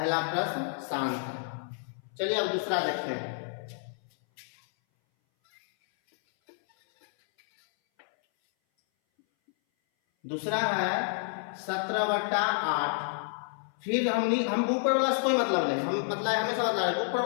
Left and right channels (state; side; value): silent; right; 58 dB below the other